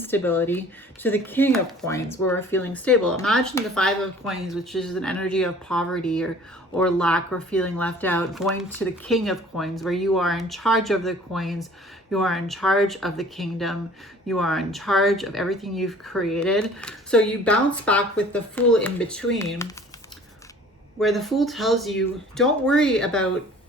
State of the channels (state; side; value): normal; both; correlation 0.49